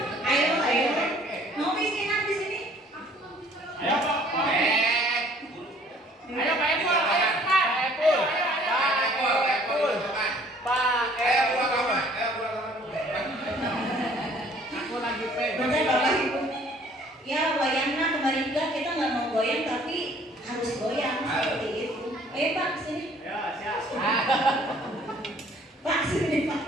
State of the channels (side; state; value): both; normal; correlation 0.56